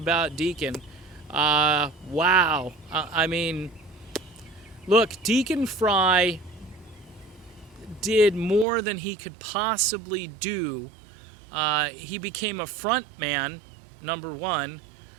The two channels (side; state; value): left; drops out; at 8.7 s